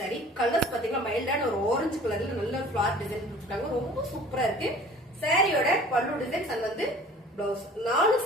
Colours பாத்தீங்கன்னா மைல்டான ஒரு ஆரஞ்சு கலர்ல நல்ல ஃபிளார் டிசைன் கொடுத்துருக்காங்க. ரொம்ப சூப்பரா இருக்கு. சாரியோட பல்லு டிசைன்ஸ் அண்ட் வந்து பிளவுஸ் 4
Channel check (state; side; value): normal; both; correlation 0.47